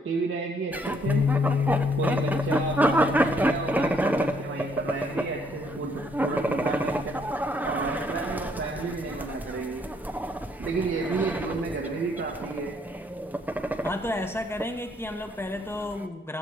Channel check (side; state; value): both; normal; correlation 0.68